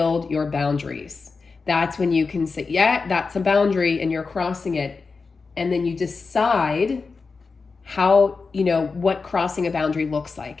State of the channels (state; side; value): quieter; right; 4.5 dB